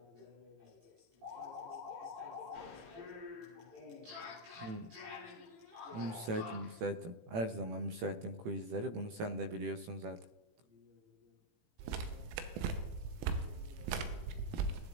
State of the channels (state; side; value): late; left; 18 ms